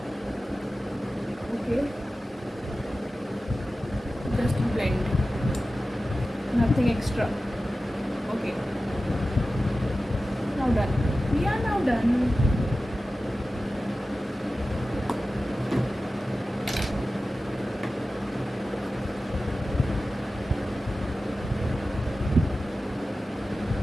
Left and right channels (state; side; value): normal; both; correlation 0.95